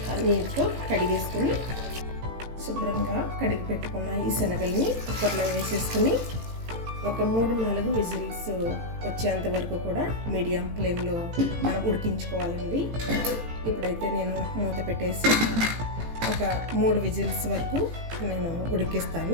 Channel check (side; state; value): left; late; 18 ms